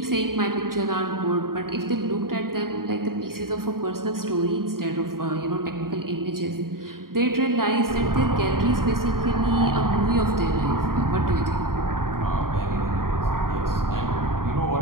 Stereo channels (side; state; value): left; late; 0.92 ms